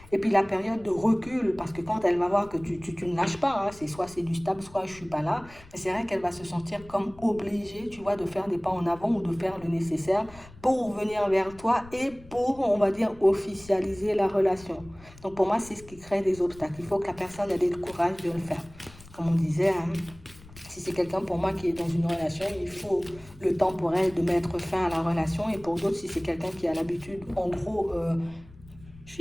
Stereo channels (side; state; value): left; noise; rumble, 21 dB below the sound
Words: Et puis la période de recul, parce que quand elle va voir que tu ne lâches pas, hein, c'est soit c'est du stable, soit je suis pas là, mais c'est vrai qu'elle va se sentir comme obligée, tu vois, de faire des pas en avant ou de faire le nécessaire pour venir vers toi et pour, on va dire, officialiser la relation. Donc pour moi, c'est ce qui crée des obstacles. Il faut que la personne ait le courage de le faire. Comme on disait, hein, si c'est quelqu'un pour moi qui est dans une relation, il faut le temps pour elle de mettre fin à la relation. Et pour d'autres, si c'est quelqu'un qui a l'habitude, en gros, je